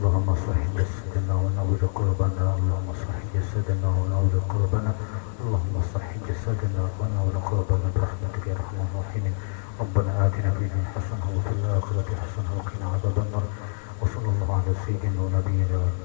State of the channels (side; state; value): right; silent; 58 dB below the other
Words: صح جسدنا ونور قلوبنا. اللهم صح جسدنا ونور قلوبنا. اللهم صح جسدنا ونور قلوبنا برحمتك يا ارحم الراحمين. ربنا آتنا في الدنيا حسنة وفي الآخرة حسنة وقنا عذاب النار. وصلى الله على سيدنا ونبينا